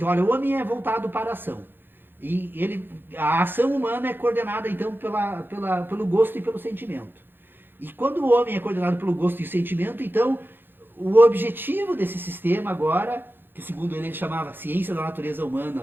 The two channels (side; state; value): left; late; 0.099 ms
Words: olha, o homem é voltado para a ação. E a ação humana é coordenada então pelo gosto e pelo sentimento. E quando o homem é coordenado pelo gosto e sentimento, então o objetivo desse sistema agora, que segundo ele chamava ciência da natureza